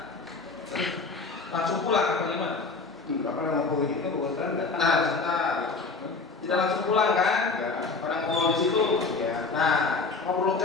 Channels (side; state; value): right; quieter; 4.1 dB